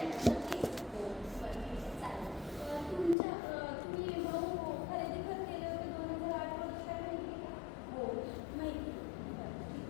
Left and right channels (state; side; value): drops out; right; at 3.2 s